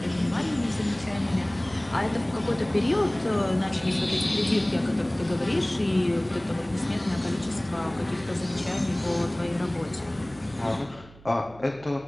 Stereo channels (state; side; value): noise; right; hum, 22 dB below the sound